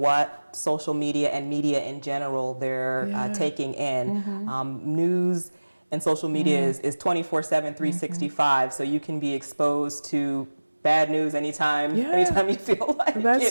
social media and media in general they're taking in. News and social media is 24/7, 365, so you can be exposed to bad news anytime you feel like That's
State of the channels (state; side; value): inverted; both; correlation -1.00